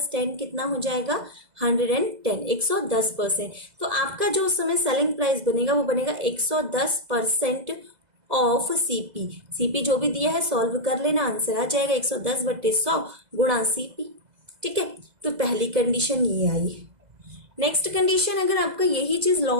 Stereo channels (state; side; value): late; left; 2.0 ms